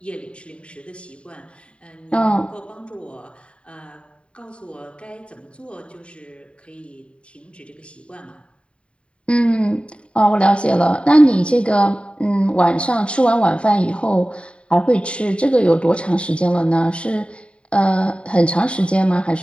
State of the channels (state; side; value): late; right; 0.058 ms